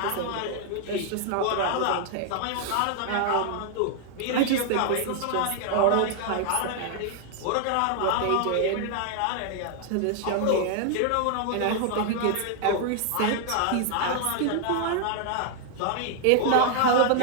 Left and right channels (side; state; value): both; different; correlation 0.00